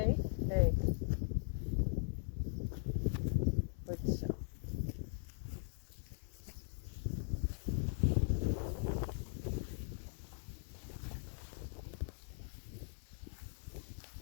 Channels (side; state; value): right; silent; 51 dB below the other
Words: nee. Goed zo.